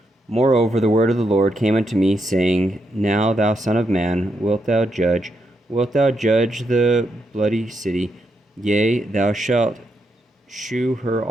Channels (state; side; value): normal; both; correlation 0.81